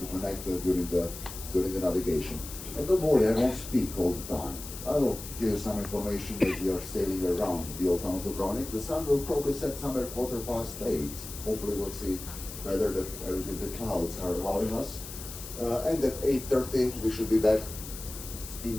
connect during the navigation. And don't worry, I won't speak all the time. I will give you some information as we are sailing around the Old Town of Dubrovnik. The sun will probably set somewhere 8:15. Hopefully we'll see whether the clouds are allowing us. And at 8:30 we should be back in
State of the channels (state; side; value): noise; left; hiss, 11 dB below the sound